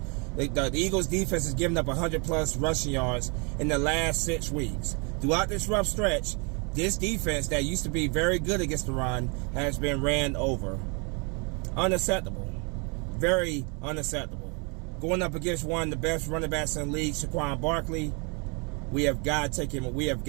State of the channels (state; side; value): quieter; left; 33.4 dB